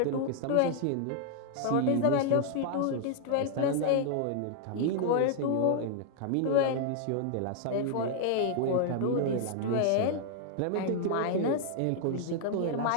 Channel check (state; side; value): different; both; correlation 0.00